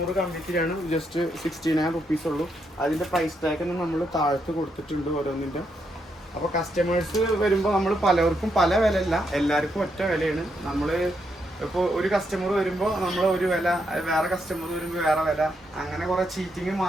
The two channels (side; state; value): both; normal; correlation 0.79